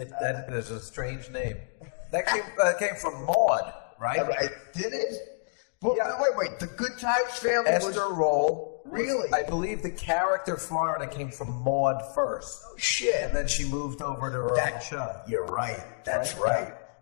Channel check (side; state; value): right; silent; digital silence